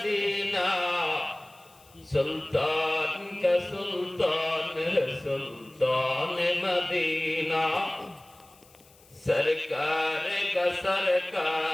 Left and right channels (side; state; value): left; noise; hiss, 27 dB below the sound